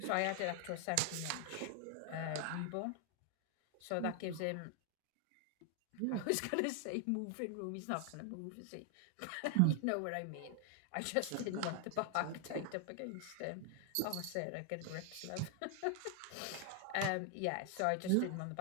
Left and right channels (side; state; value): both; different; correlation 0.00